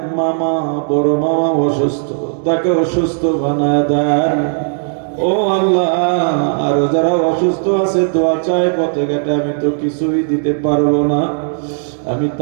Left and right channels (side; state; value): left; silent; digital silence